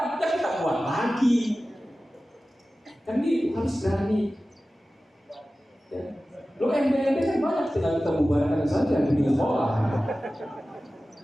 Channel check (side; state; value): both; normal; correlation 0.96